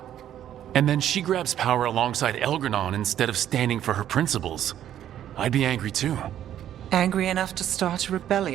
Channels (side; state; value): left; quieter; 11.0 dB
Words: And then she grabs power alongside Elganon instead of standing for her principles. I'd be angry too. Angry enough to start a